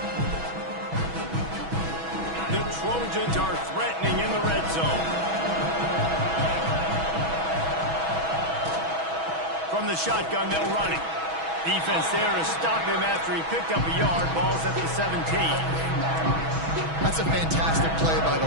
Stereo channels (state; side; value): late; left; 6.2 ms